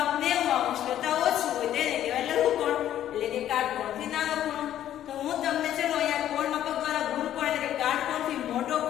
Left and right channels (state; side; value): quieter; right; 11.6 dB